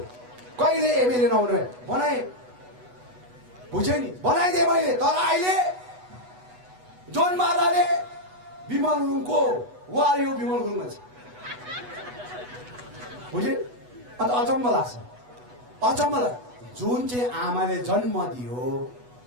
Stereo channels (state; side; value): late; left; 8.1 ms